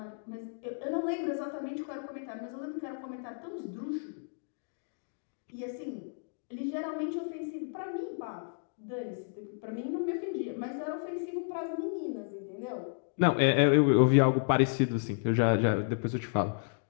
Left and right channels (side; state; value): right; silent; digital silence